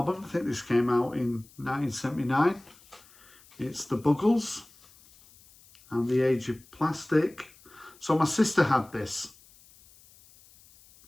I think this came out in 1979. It's the Bugles and The Age of Plastic. So my sister had this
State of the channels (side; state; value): left; noise; hiss, 26 dB below the sound